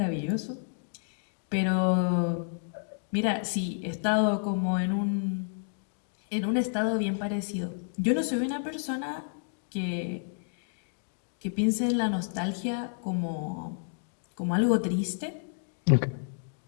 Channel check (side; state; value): right; silent; digital silence